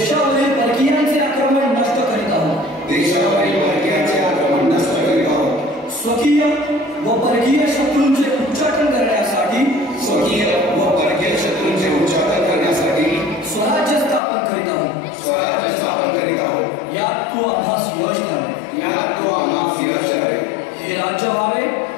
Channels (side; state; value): right; drops out; at 14.2 s